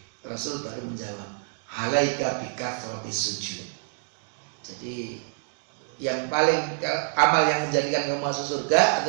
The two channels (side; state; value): left; silent; 60 dB below the other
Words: Rasul baru menjawab, alaika bikathrotis sujud. Jadi yang paling amal yang menjadikan kamu masuk surga